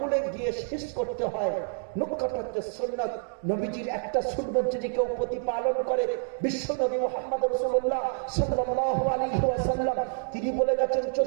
গিয়ে শেষ করতে হয়। নখ কাটাতে সুন্নাত, নবীজির একটা সুন্নাত যদি কেউ প্রতিপালন করে, বিশ্ব নবী মুহাম্মদ রাসূলুল্লাহ সাল্লাল্লাহু আলাইহি ওয়াসাল্লাম তিনি বলে গেছেন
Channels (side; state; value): left; silent; digital silence